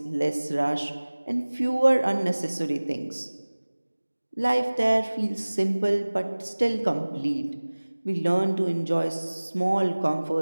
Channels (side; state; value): both; inverted; correlation -1.00